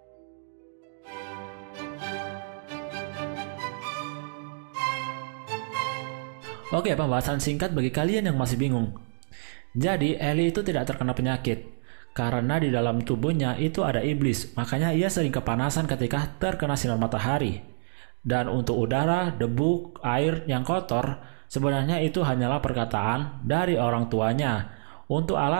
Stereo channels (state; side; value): silent; left; digital silence